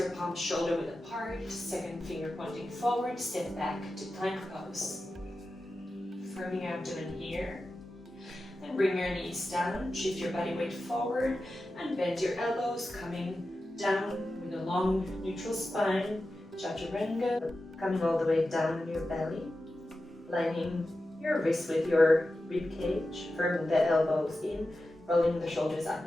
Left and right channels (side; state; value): both; normal; correlation 0.92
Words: palms shoulder width apart, second finger pointing forward, step back to plank pose. Firming your abdomen here. Then bring your knees down, shift your body weight forward, and bend your elbows, coming down with a long neutral spine, Chaturanga, coming all the way down in your belly, lining your wrists with your rib cage, firming the elbows in, rolling the shoulders up